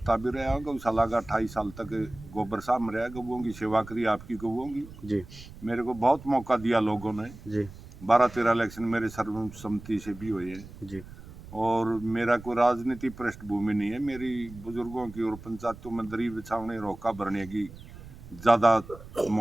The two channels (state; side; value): noise; right; rumble, 16 dB below the sound